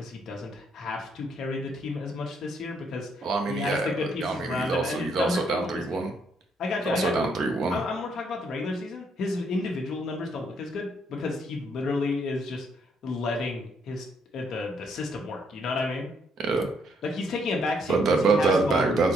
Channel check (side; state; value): both; normal; correlation 0.72